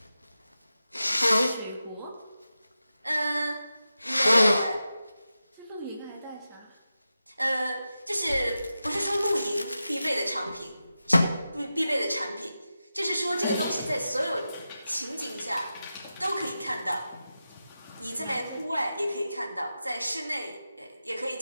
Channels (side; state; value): both; inverted; correlation -0.92